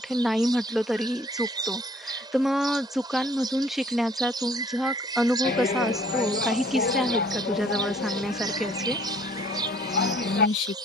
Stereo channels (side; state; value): both; normal; correlation 0.58